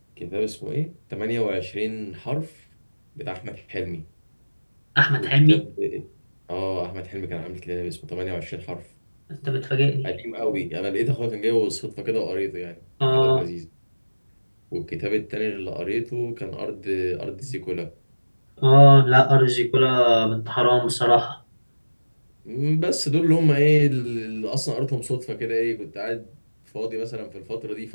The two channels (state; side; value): inverted; both; correlation -1.00